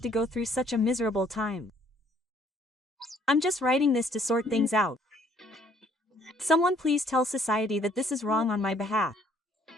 to go through such a miserable time? I'm just writing this to sort things out. Someone please tell society that this is wrong on my behalf.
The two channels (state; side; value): normal; both; correlation 0.63